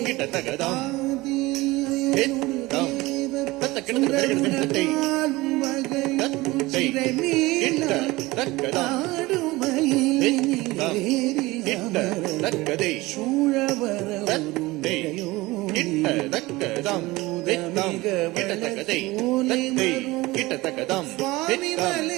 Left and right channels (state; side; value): quieter; left; 20.5 dB